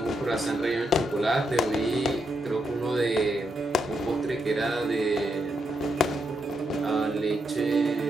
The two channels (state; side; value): normal; both; correlation 0.81